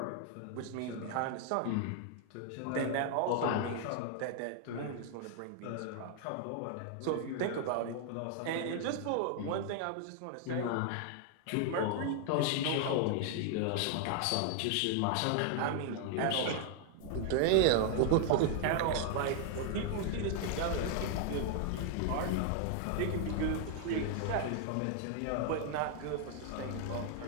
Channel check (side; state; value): both; different; correlation 0.00